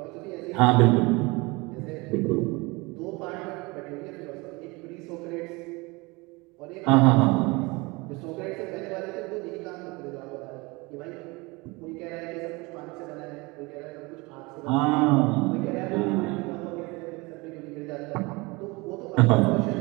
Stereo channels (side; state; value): left; quieter; 25.1 dB